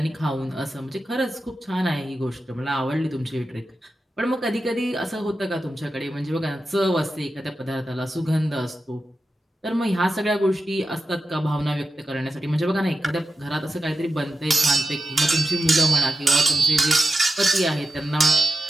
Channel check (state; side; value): normal; both; correlation 0.92